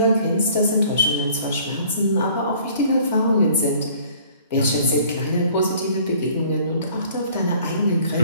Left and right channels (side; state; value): both; inverted; correlation -0.55